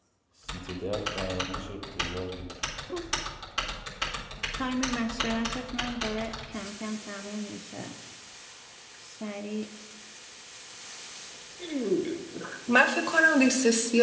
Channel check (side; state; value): both; identical; correlation 1.00